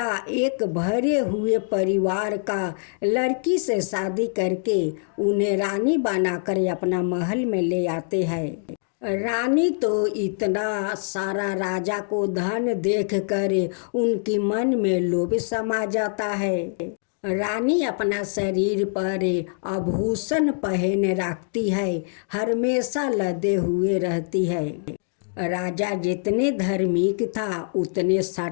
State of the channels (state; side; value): silent; right; digital silence